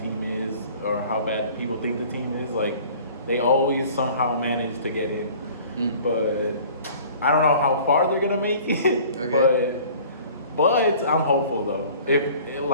team is or how bad people think the team is. Like, they always somehow manage to get in. But I don't know how far they're going to make it, But I'm hopeful though. If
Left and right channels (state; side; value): inverted; both; correlation -0.49